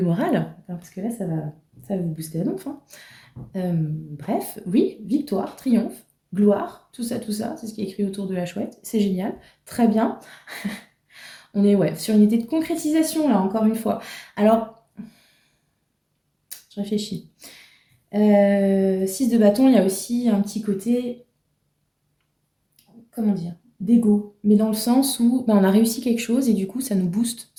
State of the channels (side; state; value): both; identical; correlation 1.00